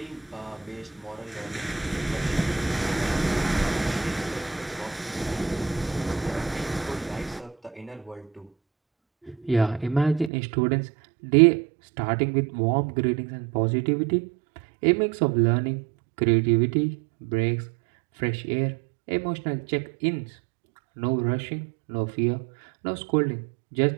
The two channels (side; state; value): left; drops out; at 10.3 s